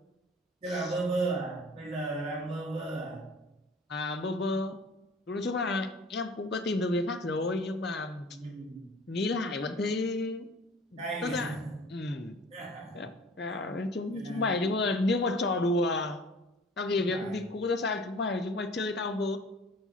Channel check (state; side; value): normal; both; correlation 0.47